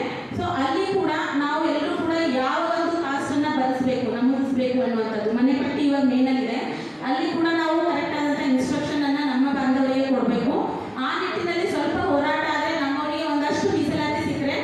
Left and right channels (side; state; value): both; identical; correlation 1.00